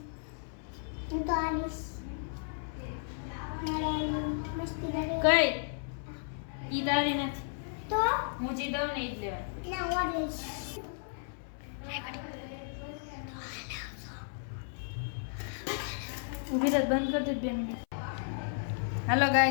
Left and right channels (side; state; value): right; silent; 55 dB below the other